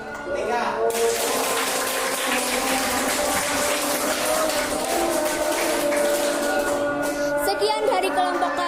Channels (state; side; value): identical; both; correlation 1.00